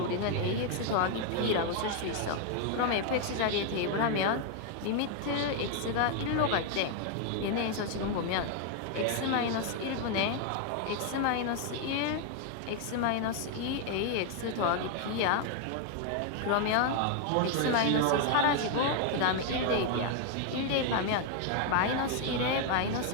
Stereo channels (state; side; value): different; both; correlation 0.00